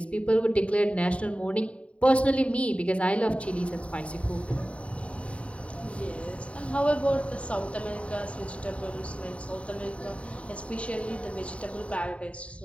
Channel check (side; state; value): right; late; 0.063 ms